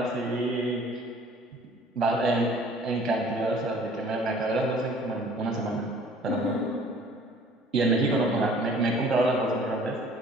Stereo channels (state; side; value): normal; both; correlation 0.53